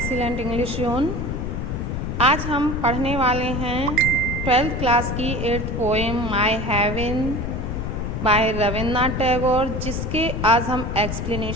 English zone. आज हम पढ़ने वाले हैं 12th क्लास की 8th poem my heaven by Rabindranath Tagore, जिसके आज हम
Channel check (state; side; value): noise; left; rumble, 3 dB below the sound